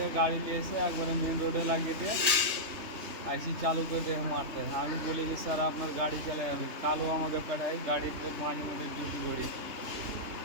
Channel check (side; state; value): left; late; 3.2 ms